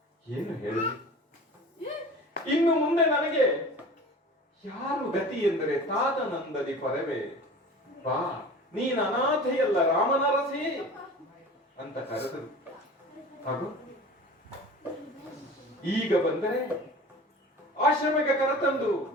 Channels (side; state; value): both; normal; correlation 0.39